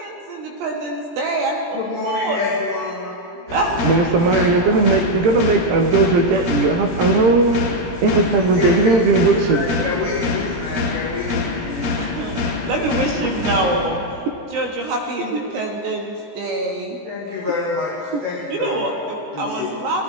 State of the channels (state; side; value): late; left; 18 ms